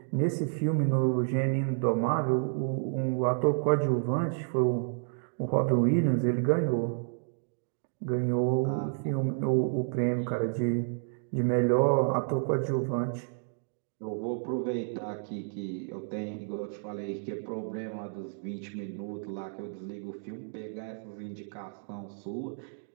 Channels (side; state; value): left; silent; digital silence